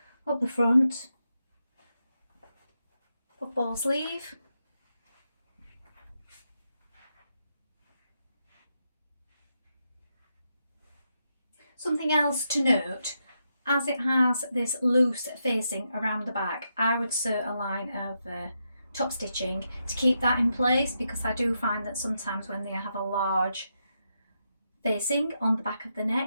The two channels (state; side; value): inverted; both; correlation -0.83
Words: up the front, puffball sleeve, something else to note, as it has this loose facing around the back, I would sew a line of top stitching to keep that in place, because I do find that sometimes when they have a large facing on the back of the